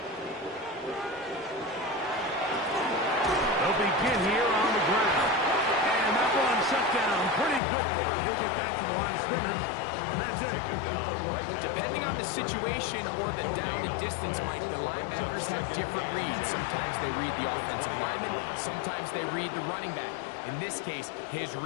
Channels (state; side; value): drops out; right; at 7.6 s